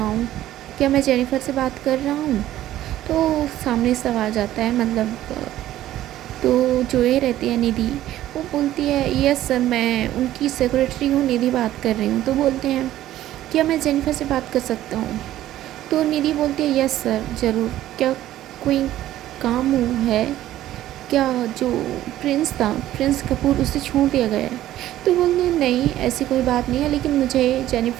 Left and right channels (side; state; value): left; quieter; 13.6 dB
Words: हूँ, क्या मैं जेनिफर से बात कर रहा हूँ? तो सामने से आ जाता है, मतलब तो जो ये रहती है निधि, वो बोलती है यस सर, मैं उनकी सेक्रेटरी हूँ, निधि बात कर रही हूँ। तो बोलते हैं क्या मैं जेनिफर से बात कर सकता हूँ? तो निधि बोलती है यस सर ज़रूर, क्या कोई काम है क्या? जो प्रिंस था, प्रिंस कपूर, उसे छोड़ दिया गया है? तो बोलते हैं नहीं ऐसी कोई बात नहीं है, लेकिन मुझे